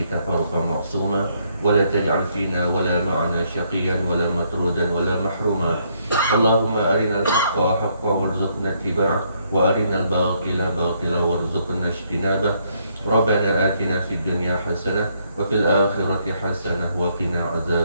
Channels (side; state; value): both; inverted; correlation -0.72